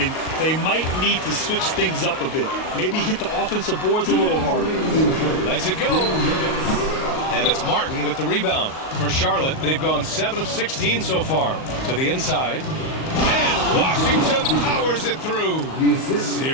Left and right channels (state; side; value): late; right; 38 ms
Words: they might need to switch things up a bit. Maybe hit the offensive boards a little harder. Lets it go. And it's Martin with the rebound. For Charlotte, they've gone 7 of 16 so far. To the inside. And Washington powers it through.